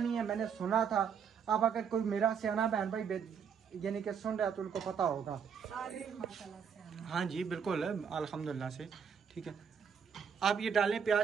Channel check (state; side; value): quieter; left; 7.1 dB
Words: है, मैंने सुना था। अब अगर कोई मेरा सियाना बहन भाई यानी कि सुन रहा है तो उनको पता होगा। हाँ जी बिल्कुल अल्हम्दुलिल्लाह से, ठीक है। आप ये डालें,